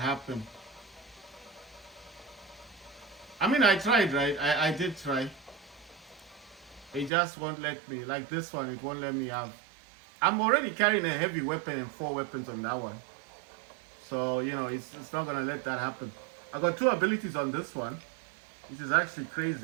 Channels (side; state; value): left; drops out; at 7.1 s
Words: I mean, I tried, right? I did try. It just won't let me. Like this one, it won't let me have. I'm already carrying a heavy weapon and 4 weapons on that one. So, you know, it's not gonna let that happen. I got 2 abilities on this one, which is actually